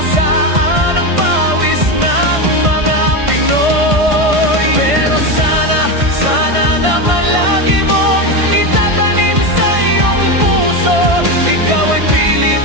saan ang pawis ng mga Pinoy. Pero sana, sana naman lagi mong itatanim sa iyong puso, ikaw ay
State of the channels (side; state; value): left; late; 1.5 ms